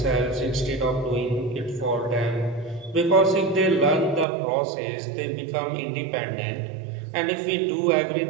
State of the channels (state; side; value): drops out; left; at 4.2 s